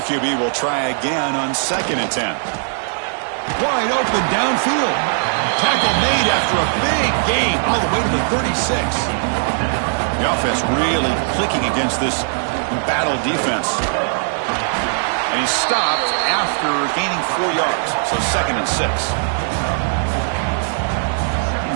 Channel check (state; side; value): silent; left; 67 dB below the other